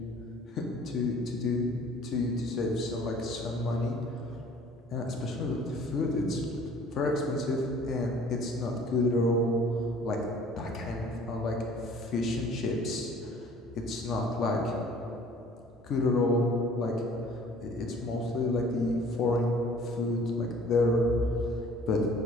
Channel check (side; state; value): both; normal; correlation 0.52